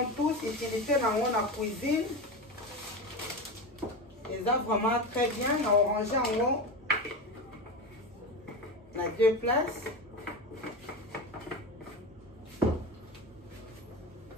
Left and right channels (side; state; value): both; normal; correlation 0.22